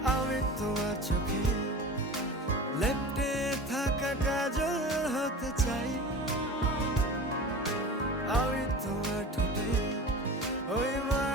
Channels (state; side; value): normal; both; correlation 0.35